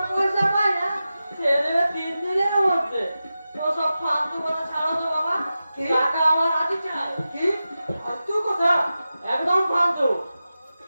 পয়সা পায় না সে দেবে 3 দিনের মধ্যে। তো সব ফালতু কথা ছাড়ো তো বাবা, কি? টাকা আমার আজই চাই। কি ফালতু কথা? একদম ফালতু।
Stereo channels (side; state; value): both; inverted; correlation -0.93